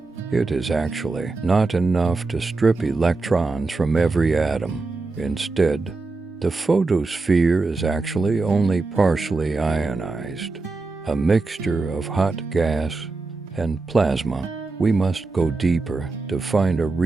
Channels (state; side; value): quieter; left; 3.7 dB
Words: it is actually not enough to strip electrons from every atom. Instead, the photosphere is actually only partially ionized, a mixture of hot gas and plasma. We must go deeper to find a